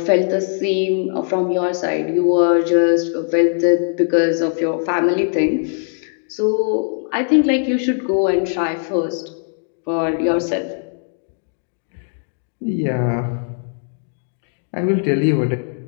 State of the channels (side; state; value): right; silent; 64 dB below the other